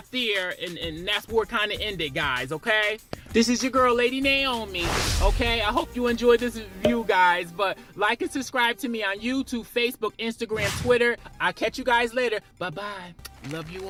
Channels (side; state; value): both; identical; correlation 1.00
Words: there, and that's where it kind of ended, guys, okay? This is your girl, Lady Naomi, okay? I hope you enjoyed this review, guys, but like and subscribe to me on YouTube, Facebook, Instagram, Twitter. I'll catch you guys later. Bye-bye. Love you